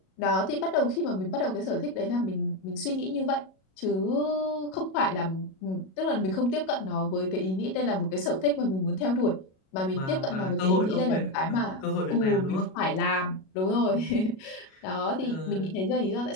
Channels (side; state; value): right; late; 37 ms